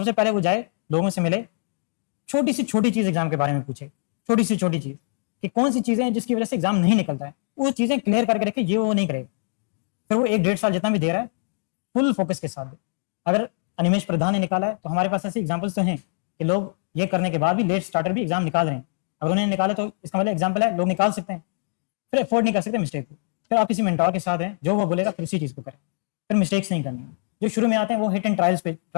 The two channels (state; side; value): silent; right; digital silence